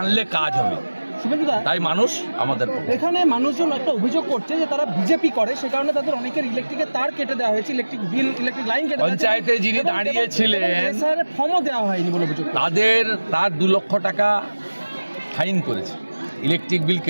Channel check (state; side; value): inverted; both; correlation -1.00